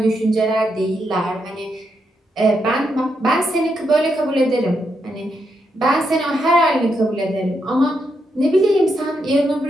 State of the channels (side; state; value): both; normal; correlation 0.81